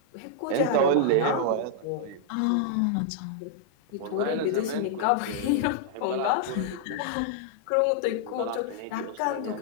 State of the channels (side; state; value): both; different; correlation -0.01